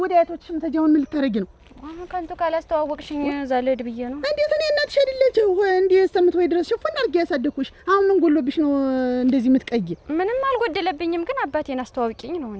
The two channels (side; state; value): both; identical; correlation 1.00